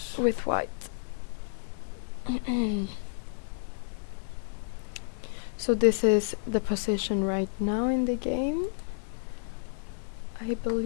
with White. So this is the position right now in the game, I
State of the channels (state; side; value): silent; right; digital silence